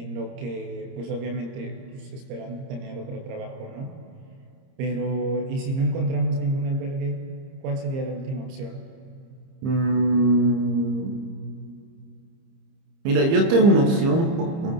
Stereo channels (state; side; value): late; left; 30 ms